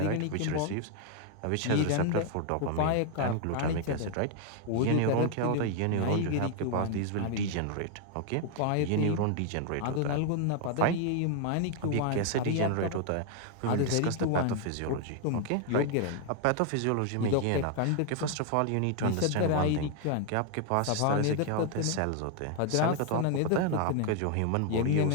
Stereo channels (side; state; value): both; different; correlation 0.00